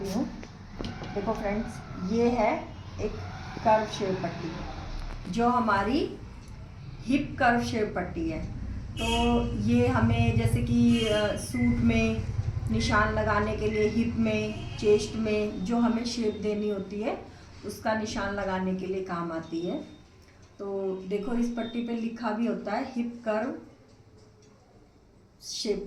हूँ। देखो फ्रेंड्स, ये है एक कर्व शेप पट्टी जो हमारी हिप कर्व शेप पट्टी है। तो ये हमें जैसे कि सूट में निशान लगाने के लिए, हिप में, चेस्ट में जो हमें शेप देनी होती है उसका निशान लगाने के लिए काम आती है। तो देखो, इस पट्टी पे लिखा भी होता है हिप कर्व शेप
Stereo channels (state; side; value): identical; both; correlation 1.00